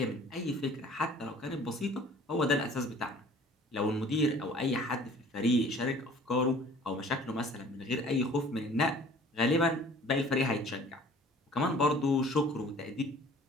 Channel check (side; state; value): both; normal; correlation 0.50